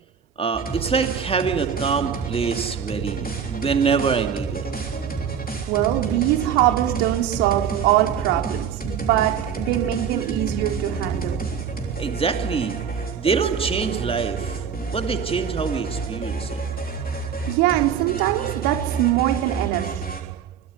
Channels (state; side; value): quieter; left; 7.9 dB